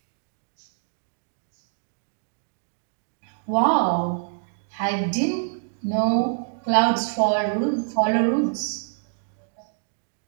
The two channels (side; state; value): left; silent; digital silence